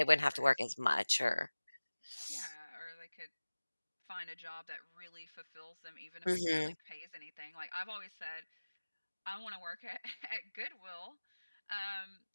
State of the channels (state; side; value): inverted; both; correlation -1.00